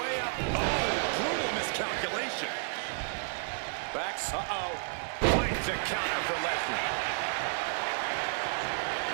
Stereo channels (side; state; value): left; silent; digital silence